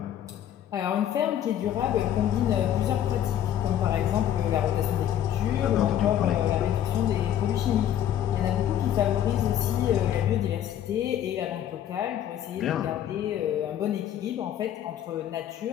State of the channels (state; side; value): quieter; right; 10.6 dB